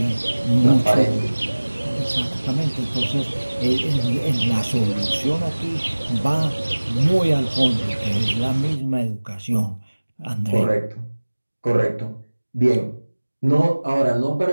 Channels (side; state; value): both; inverted; correlation -1.00